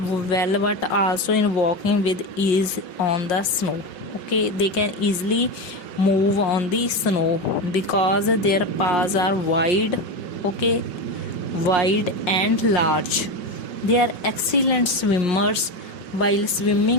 but also in walking with ease on the snow. Okay, they can easily move on the snow because their paws are wide. Okay, wide and large. They are excellent swimmers. While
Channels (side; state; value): right; late; 5.1 ms